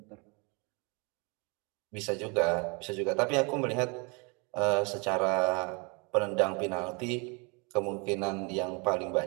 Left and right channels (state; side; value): quieter; left; 31.6 dB